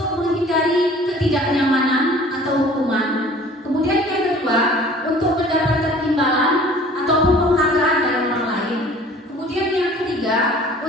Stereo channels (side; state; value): both; normal; correlation 0.49